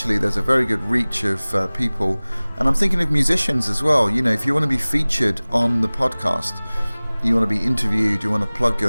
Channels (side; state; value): both; inverted; correlation -1.00